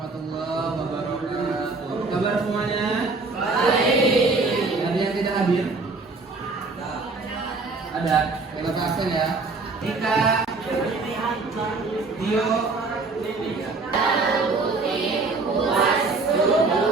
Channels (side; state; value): left; quieter; 3.8 dB